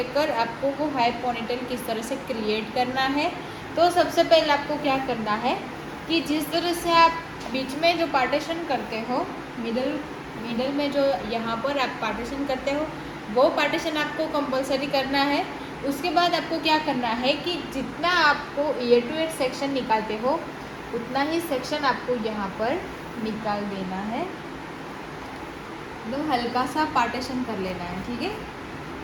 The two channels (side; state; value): both; identical; correlation 1.00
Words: आपको वो हाई पोनीटेल किस तरह से क्रिएट करना है। तो सबसे पहले आपको क्या करना है कि जिस तरह से आप बीच में जो पार्टीशन करते हो, मिडल में जो यहाँ पर आप पार्टीशन करते हो वो पार्टीशन आपको कंपलसरी करना है। उसके बाद आपको क्या करना है कि जितना आपको ईयर टू ईयर सेक्शन निकालते हो उतना ही सेक्शन आपको यहाँ पर निकाल देना है। एकदम हल्का सा पार्टीशन कर लेना है, ठीक है।